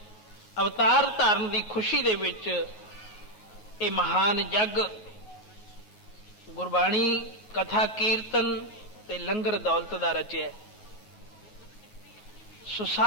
ਅਵਤਾਰ ਧਾਰਨ ਦੀ ਖੁਸ਼ੀ ਦੇ ਵਿੱਚ ਇਹ ਮਹਾਨ ਜਗ ਗੁਰਬਾਣੀ ਕਥਾ ਕੀਰਤਨ ਤੇ ਲੰਗਰ ਦੌਲਤ ਦਾ ਰਚਿਆ। ਸੋ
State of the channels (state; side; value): late; right; 9.4 ms